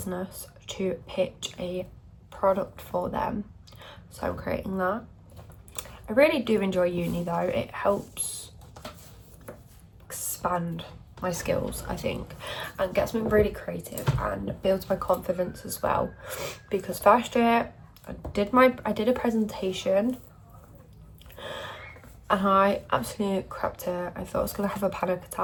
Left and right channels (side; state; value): both; identical; correlation 1.00